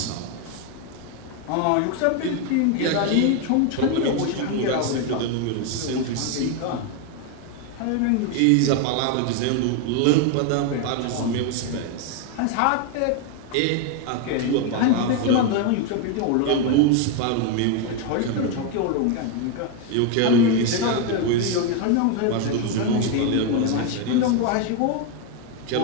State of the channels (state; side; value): different; both; correlation 0.01